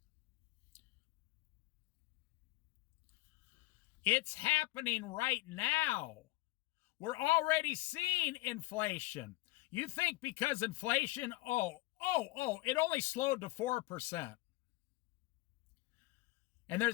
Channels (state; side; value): quieter; right; 20.4 dB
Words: It's happening right now. We're already seeing inflation. You think because inflation, it only slowed to 4%. And